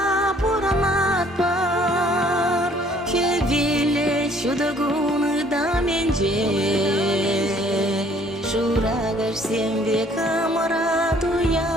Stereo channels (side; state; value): both; normal; correlation 0.59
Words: пурамат бар Хевиле чудагуны да менже Шурагар сембе камарат